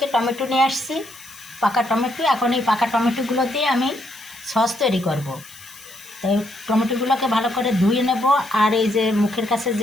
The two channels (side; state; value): left; noise; hiss, 20 dB below the sound